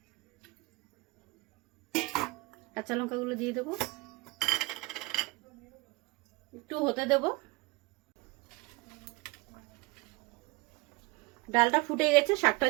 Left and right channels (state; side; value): quieter; left; 24.6 dB